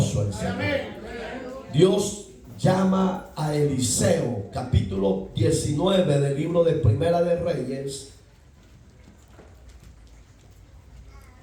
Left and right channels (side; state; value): both; identical; correlation 1.00